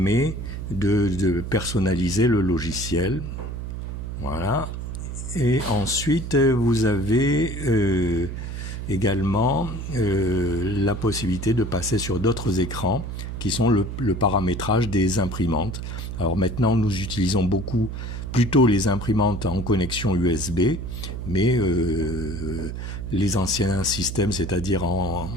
de personnaliser le logiciel. Voilà. Et ensuite, vous avez également la possibilité de passer sur d'autres écrans qui sont le paramétrage des imprimantes. Alors maintenant, nous utilisons plutôt les imprimantes en connexion USB, mais les anciens systèmes, c'est-à-dire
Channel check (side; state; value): right; noise; hum, 6 dB below the sound